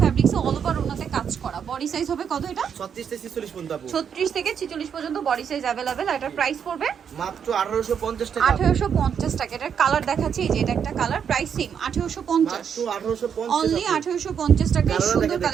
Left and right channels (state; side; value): quieter; left; 7.6 dB